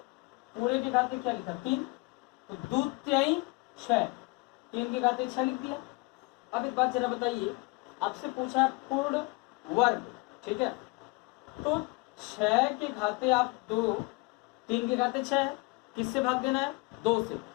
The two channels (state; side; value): quieter; right; 26.1 dB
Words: पूरे के घाते क्या लिखा? 3, तो 2 3 6, 3 के घाते 6 लिख दिया। अब एक बात जरा बताइए, आपसे पूछा है पूर्ण वर्ग, ठीक है, तो 6 के घाते आप 2, 3 के घाते 6 है, किससे भाग देना है? 2 से।